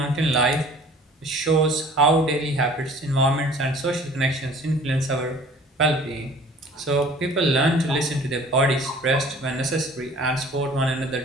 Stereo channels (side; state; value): both; normal; correlation 0.50